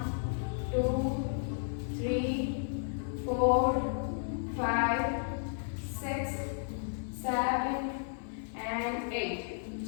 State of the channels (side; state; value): right; silent; digital silence